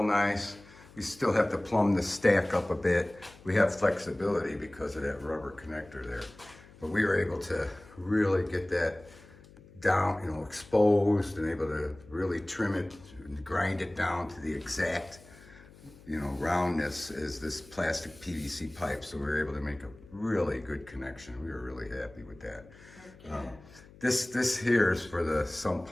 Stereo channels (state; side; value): noise; left; hum, 22 dB below the sound